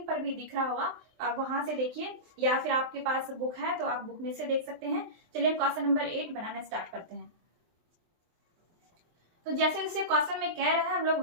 पर भी दिख रहा होगा, आप वहां से देखिए या फिर आपके पास बुक है तो आप बुक में से देख सकते हैं। चलिए हम क्वेश्चन नंबर 8 बनाना स्टार्ट करते हैं। तो जैसे जैसे क्वेश्चन में कह रहा है हम लोग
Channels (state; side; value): late; left; 23 ms